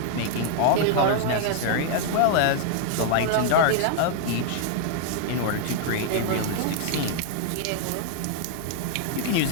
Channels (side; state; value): both; different; correlation 0.00